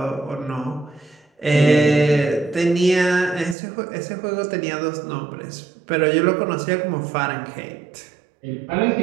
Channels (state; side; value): drops out; left; at 3.6 s